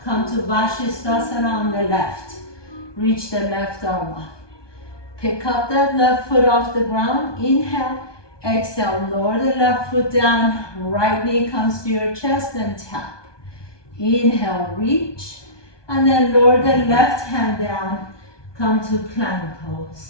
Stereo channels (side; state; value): right; late; 1.2 ms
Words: Come to Vashisthasana on the left. Reach the left arm up. Pick up that left foot off the ground. Inhale. Exhale, lower the left foot down, right knee comes to your chest and tap. Inhale, reach, and then lower the left hand down, come to plank